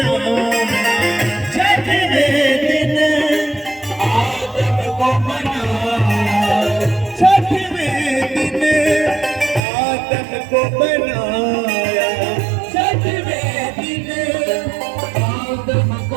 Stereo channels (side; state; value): left; drops out; at 9.7 s